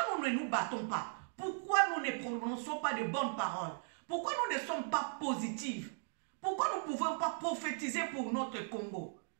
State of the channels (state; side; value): silent; left; digital silence